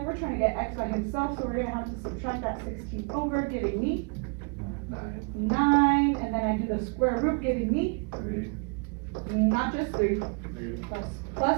We're trying to get x by himself, so we're gonna have to subtract that 16 over, giving me 9. And then I do the square root, giving me not just 3,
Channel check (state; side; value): quieter; left; 35.0 dB